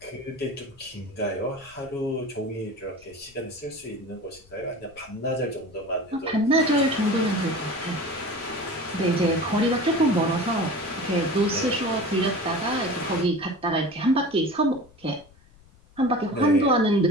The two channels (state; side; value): noise; left; rumble, 26 dB below the sound